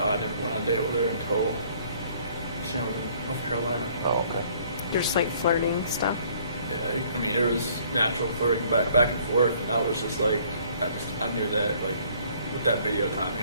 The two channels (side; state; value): both; inverted; correlation -0.59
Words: never went on a date with her until she was in North Carolina. Oh, okay. Just like flirting stuff. Yeah, I mean there was natural flirting back and forth, and I was just like, I knew that like with that video timing,